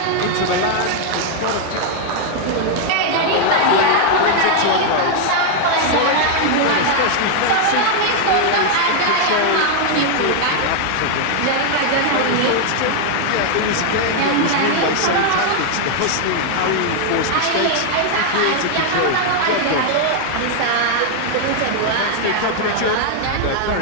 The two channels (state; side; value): different; both; correlation 0.00